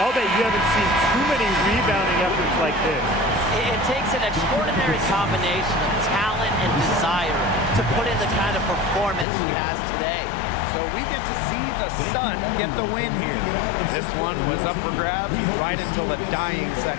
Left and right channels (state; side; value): drops out; right; at 9.2 s